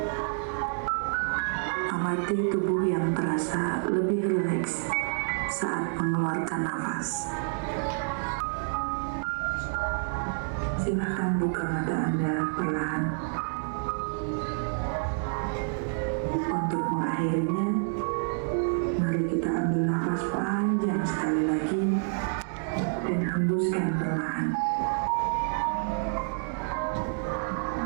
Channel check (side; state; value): left; silent; 59 dB below the other